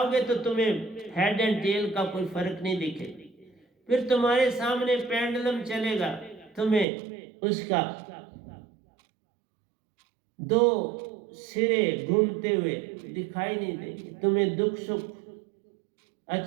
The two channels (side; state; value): left; drops out; at 6.9 s